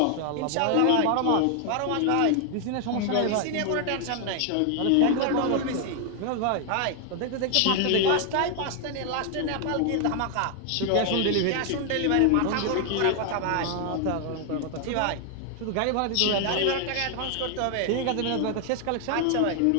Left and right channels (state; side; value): different; both; correlation 0.00